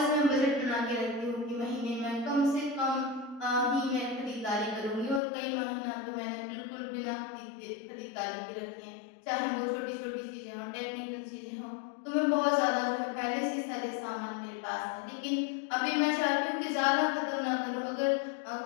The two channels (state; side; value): drops out; right; at 5.2 s